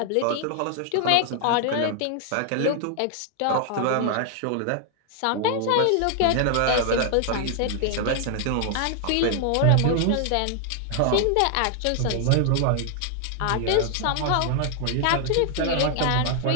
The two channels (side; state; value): both; different; correlation 0.00